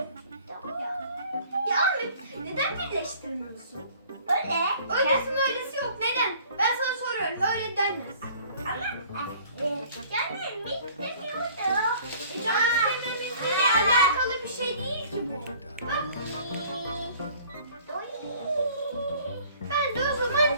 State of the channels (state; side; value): inverted; both; correlation -0.52